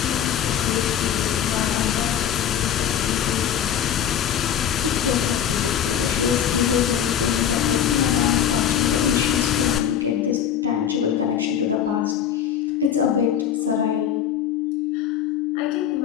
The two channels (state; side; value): quieter; right; 9.3 dB